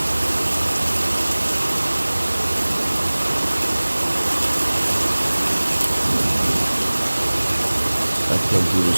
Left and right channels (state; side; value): inverted; both; correlation -1.00